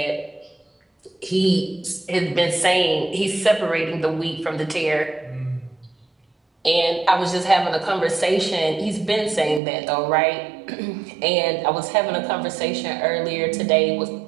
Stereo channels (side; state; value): left; drops out; at 9.6 s